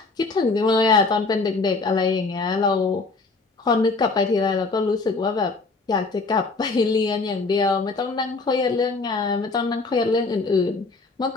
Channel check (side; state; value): right; quieter; 3.8 dB